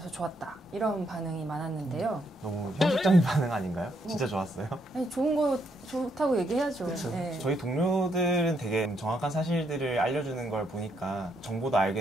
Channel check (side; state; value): both; normal; correlation 0.75